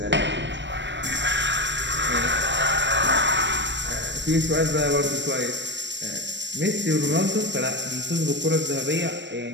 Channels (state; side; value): late; left; 0.53 ms